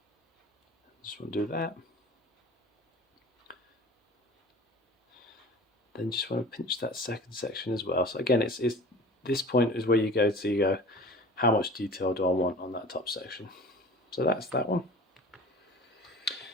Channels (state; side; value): normal; both; correlation 0.40